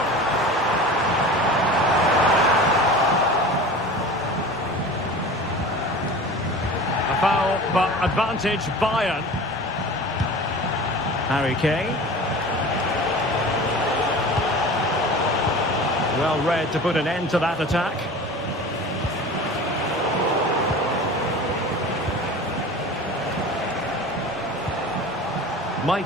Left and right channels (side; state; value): both; normal; correlation 0.37